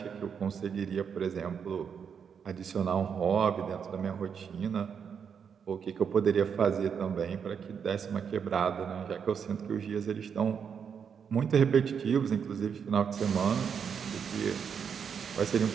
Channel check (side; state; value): left; quieter; 7.0 dB